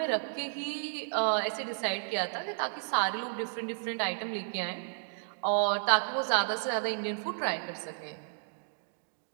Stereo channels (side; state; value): left; silent; digital silence